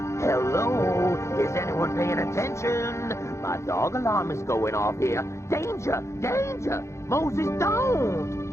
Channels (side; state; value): right; late; 0.14 ms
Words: Hello? Is anyone paying attention? My dog alarm is going off here. Danger! Danger! Moses, don't!